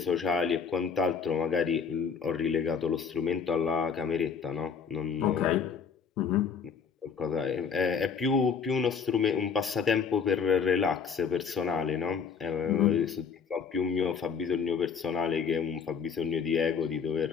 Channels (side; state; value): right; quieter; 6.2 dB